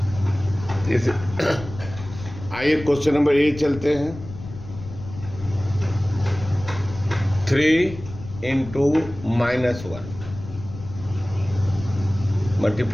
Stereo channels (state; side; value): noise; left; rumble, 13 dB below the sound